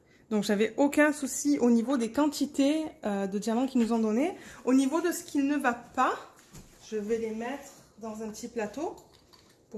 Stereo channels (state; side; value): identical; both; correlation 1.00